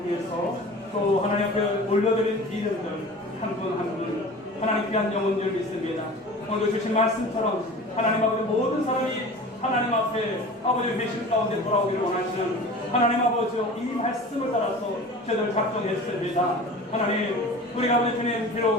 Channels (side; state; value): both; normal; correlation 0.39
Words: 위해서 또 하나님 앞에 올려드린 이름들 한 분 한 분 하나님 귀한 영혼들 믿습니다. 오늘도 주신 말씀처럼 하나님 아버지 모든 사람이 하나님 앞에 아버지 회심 가운데 돌아오기를 원하시는 하나님 아버지 이 말씀을 따라서 저희들 작정했습니다. 하나님 우리가 아버지 주님